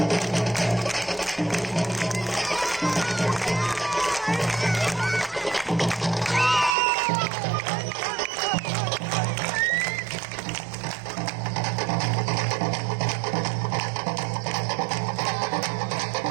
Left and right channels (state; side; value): drops out; left; at 6.8 s